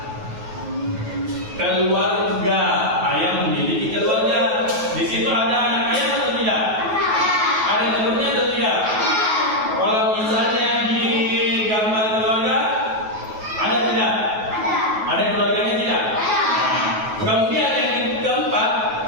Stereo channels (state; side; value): late; left; 9.3 ms